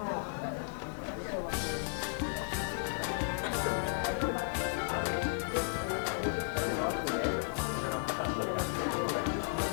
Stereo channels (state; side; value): silent; right; digital silence